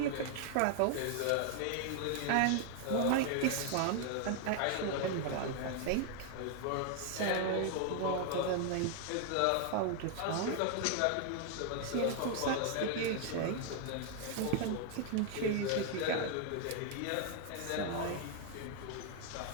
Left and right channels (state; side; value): different; both; correlation 0.00